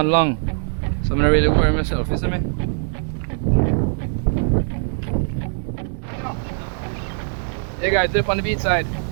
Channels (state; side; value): silent; left; 65 dB below the other